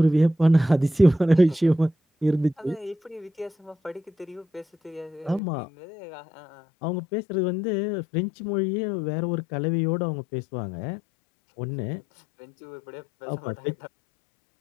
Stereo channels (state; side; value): drops out; right; at 5.4 s